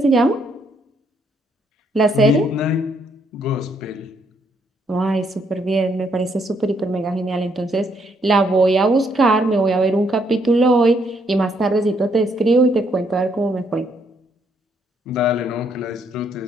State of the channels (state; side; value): normal; both; correlation 0.72